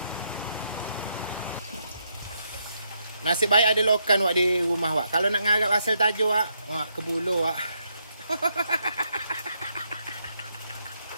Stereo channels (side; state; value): both; inverted; correlation -0.78